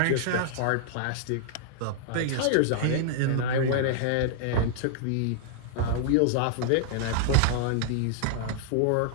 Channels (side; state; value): both; different; correlation -0.01